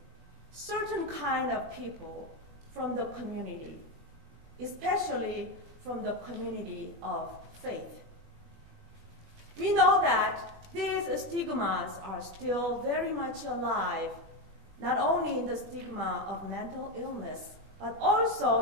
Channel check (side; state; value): left; late; 21 ms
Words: certain kind of people from the community, especially from the community of faith. We know that these stigmas are still very much alive, not only in the stigma of mental illness, but also